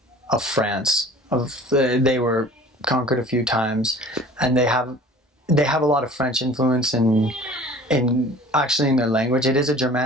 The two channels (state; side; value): normal; both; correlation 0.46